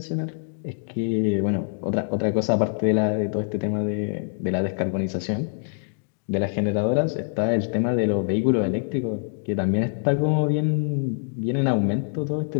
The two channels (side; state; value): right; silent; digital silence